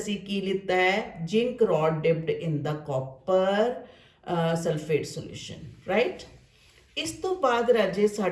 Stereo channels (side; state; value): both; identical; correlation 1.00